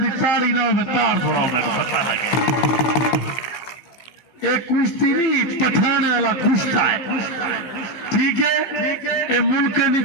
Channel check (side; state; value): right; late; 15 ms